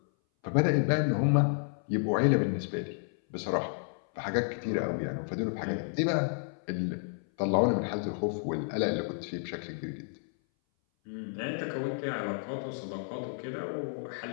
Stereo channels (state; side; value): silent; right; 57 dB below the other